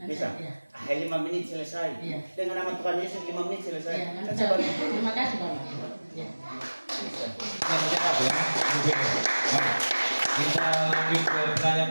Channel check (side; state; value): both; inverted; correlation -1.00